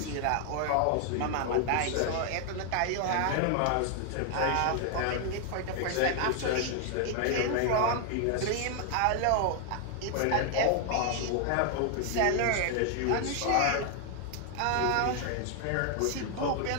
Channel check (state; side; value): different; both; correlation 0.00